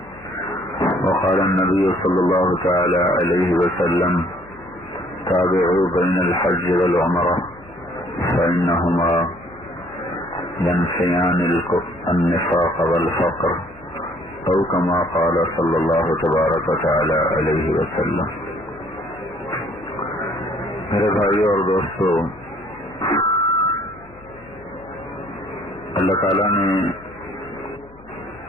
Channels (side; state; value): left; noise; hum, 25 dB below the sound